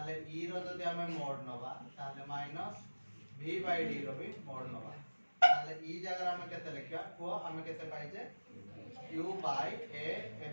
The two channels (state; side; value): inverted; both; correlation -1.00